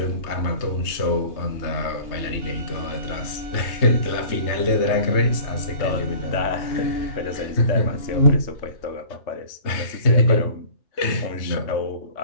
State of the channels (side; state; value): right; late; 3.2 ms